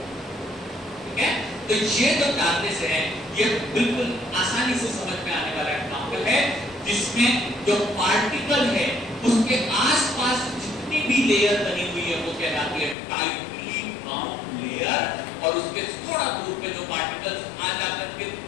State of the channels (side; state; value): right; drops out; at 13.0 s